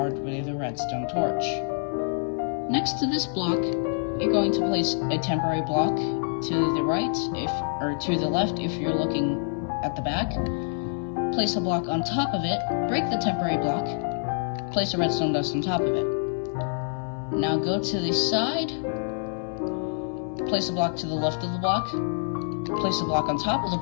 with a redstone torch. Next to this block, you're going to place a temporary block to the right, or to the left if you're looking at the back. Place a block on top of it, break the temporary block, place a redstone dust on top of it. Now go to the side, place a block to the left of the block, place a block on top of the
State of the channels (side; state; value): right; silent; digital silence